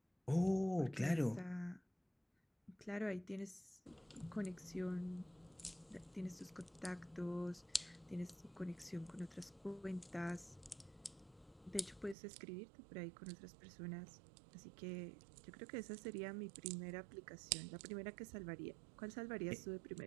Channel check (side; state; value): left; drops out; at 12.2 s